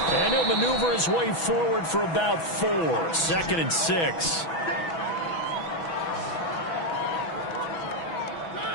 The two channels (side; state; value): right; late; 6.1 ms